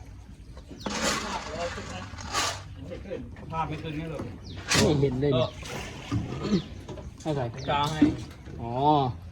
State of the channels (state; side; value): identical; both; correlation 1.00